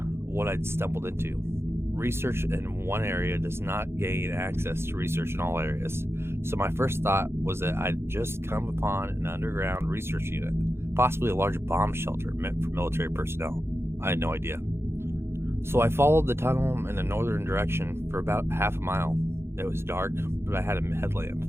what I'd stumbled into. Research in one area does not gain access to research in all areas. So my first thought was that I'd just come upon an underground research unit, possibly a large bomb shelter meant for military personnel. I had no idea. So I followed the tunnel in a northern direction for about half a mile. It was dark, but I had a headlamp.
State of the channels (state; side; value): late; left; 0.12 ms